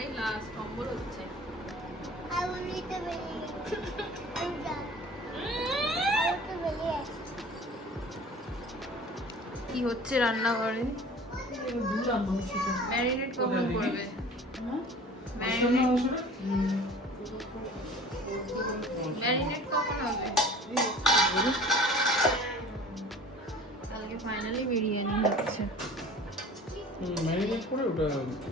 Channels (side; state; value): both; normal; correlation 0.44